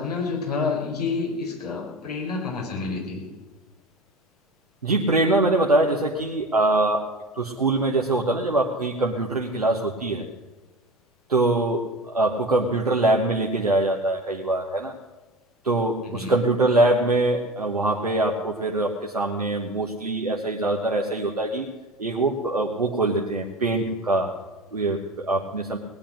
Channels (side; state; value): both; normal; correlation 0.35